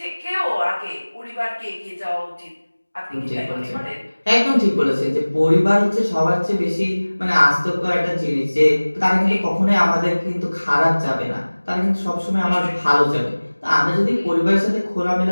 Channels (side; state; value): both; inverted; correlation -1.00